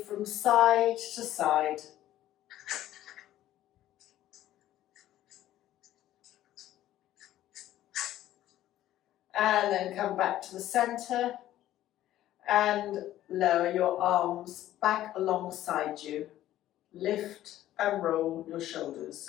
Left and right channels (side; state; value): right; quieter; 13.5 dB